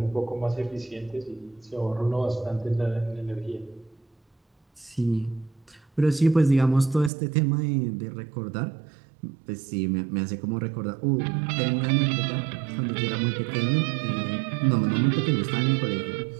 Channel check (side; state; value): left; drops out; at 7.1 s